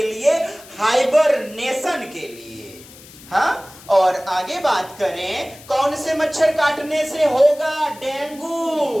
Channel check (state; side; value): noise; left; hiss, 20 dB below the sound